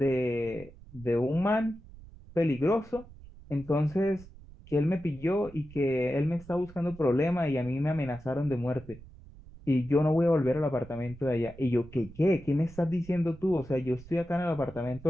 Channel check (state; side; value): noise; right; rumble, 19 dB below the sound